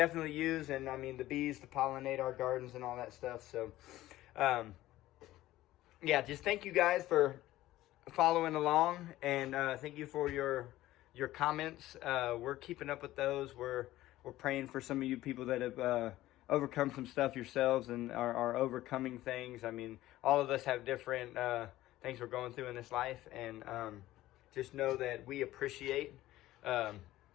use. And I mean, the bees to pollinate our gardens and all that stuff. So yeah, just thank you guys for following along, and thank you for your comments. We're keeping up with those. We're praying for some of you people that have overcome some stuff yourselves and are overcoming things. I mean, all of us have different things we're going through in this life, and just know that we appreciate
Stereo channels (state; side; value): quieter; right; 15.7 dB